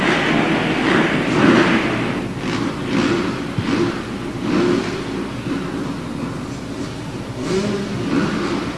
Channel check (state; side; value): identical; both; correlation 1.00